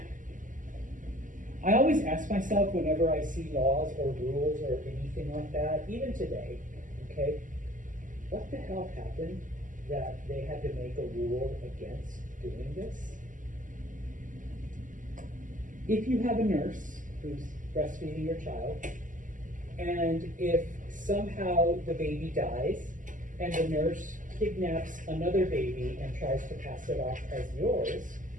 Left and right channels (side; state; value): left; late; 0.38 ms